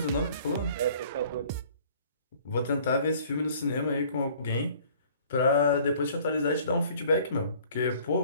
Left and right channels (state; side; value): inverted; both; correlation -0.54